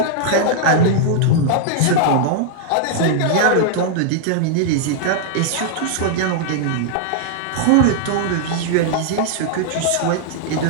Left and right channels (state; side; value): different; both; correlation -0.01